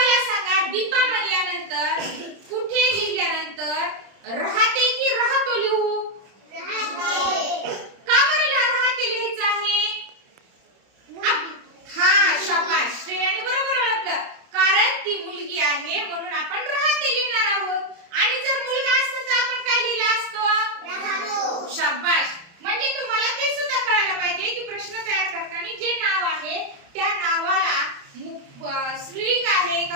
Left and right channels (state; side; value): late; left; 30 ms